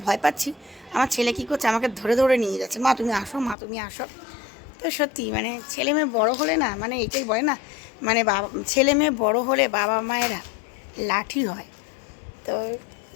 ভয় পাচ্ছি, আমার ছেলে কী করছে, আমাকে ধরে ধরে নিয়ে যাচ্ছে, মা তুমি আসো, মা তুমি আসো। তো সত্যি মানে ছেলে মেয়ে বড়ো হলে না, মানে এটাই বলে না, মানে বাবা ছেলে মেয়ে বড়ো হলে বাবা মায়েরা লাঠি হয়। তো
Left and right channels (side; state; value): right; drops out; at 3.6 s